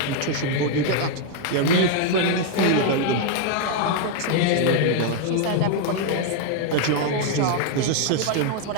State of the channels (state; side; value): different; both; correlation 0.00